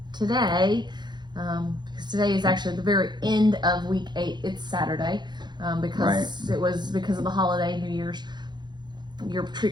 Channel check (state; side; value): late; left; 0.21 ms